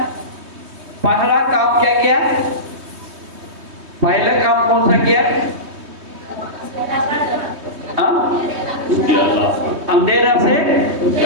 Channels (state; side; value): late; left; 3.2 ms